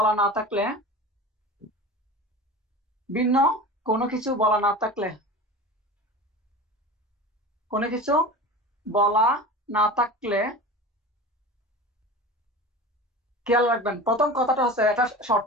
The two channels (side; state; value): both; normal; correlation 0.33